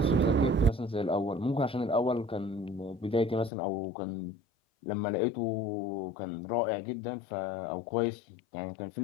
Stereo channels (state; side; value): drops out; right; at 3.5 s